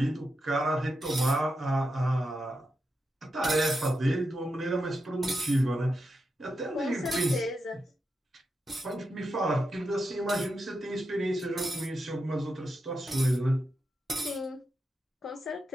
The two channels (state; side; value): normal; both; correlation 0.87